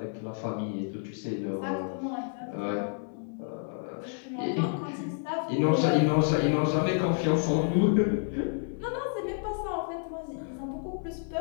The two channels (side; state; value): right; silent; 58 dB below the other